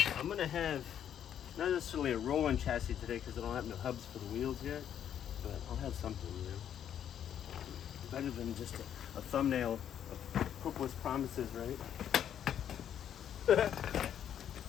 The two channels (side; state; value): right; quieter; 9.6 dB